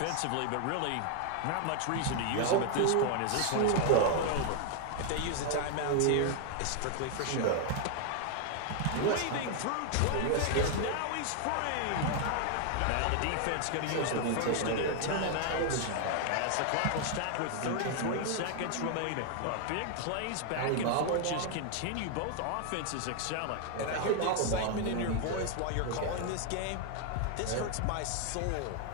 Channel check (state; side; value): different; both; correlation 0.00